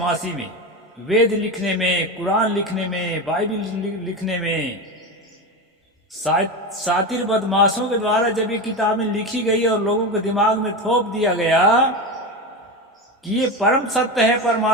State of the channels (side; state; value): both; normal; correlation 0.20